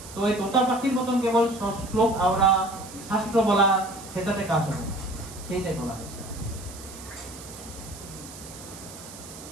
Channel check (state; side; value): noise; right; hiss, 15 dB below the sound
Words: তো এই তোতা পাখির মতন কেবল শ্লোক আওড়া শাস্ত্র বলা সেটাতে কাজ হবে, সেইটাই বলা হয়েছে।